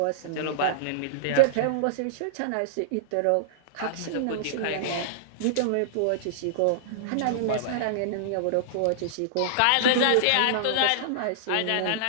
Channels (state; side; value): different; both; correlation -0.02